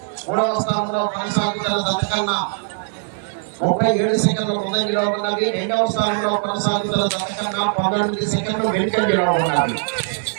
3వ స్థానంలో కొనసాగుతున్న జత కన్నా 37 సెకండ్ల ముందంజలో ఉన్నవి. 2వ స్థానంలో కొనసాగుతున్న జత కన్నా 19 సెకండ్లు వెనుకంజలో ఉన్నవి.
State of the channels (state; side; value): silent; left; digital silence